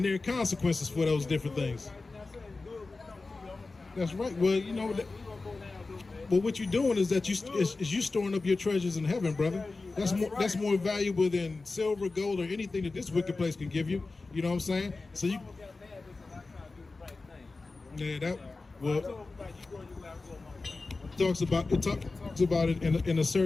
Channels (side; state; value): right; quieter; 3.7 dB